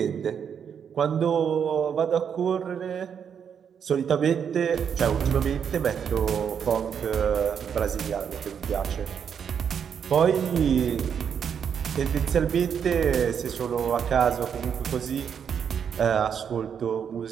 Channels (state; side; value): quieter; left; 7.6 dB